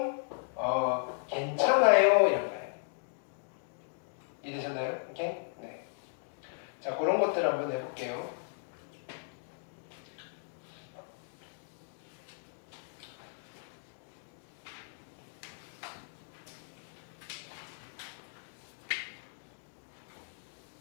괜찮아요 이런 거예요. 이해되셨나요? 오케이? 네. 자, 그런 것들 한번 해볼게요.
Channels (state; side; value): silent; right; digital silence